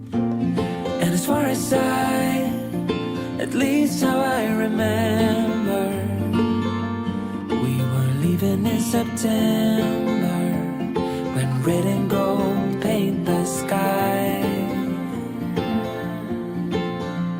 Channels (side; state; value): both; identical; correlation 1.00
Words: And as far as at least how I remember, we were leaving in September, when red and gold paint the sky.